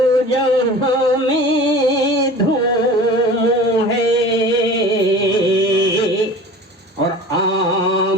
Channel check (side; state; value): both; normal; correlation 0.39